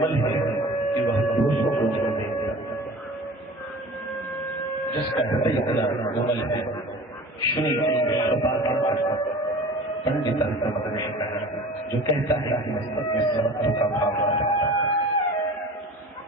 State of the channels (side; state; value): both; normal; correlation 0.40